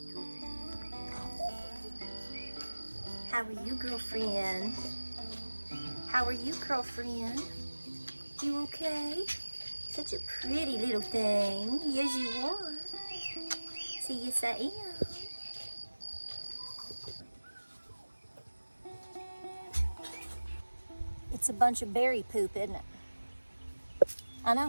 How are you, girlfriend? How are you, girlfriend? You okay? Such a pretty little thing. Yes, you are. See, yes, I am. It's a bunch of berry poop, isn't it? I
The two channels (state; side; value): inverted; both; correlation -1.00